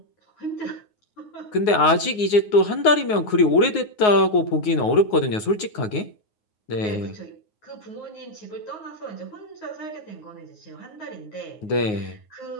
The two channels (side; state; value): right; late; 9.5 ms